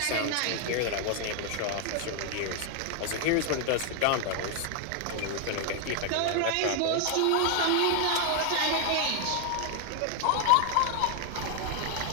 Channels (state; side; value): different; both; correlation 0.00